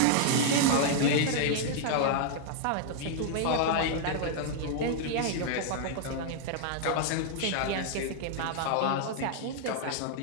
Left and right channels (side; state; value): both; different; correlation -0.01